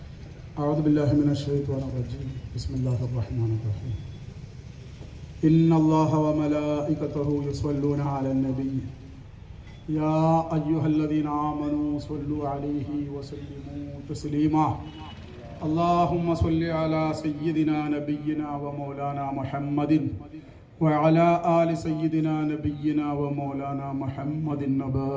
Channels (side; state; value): both; identical; correlation 1.00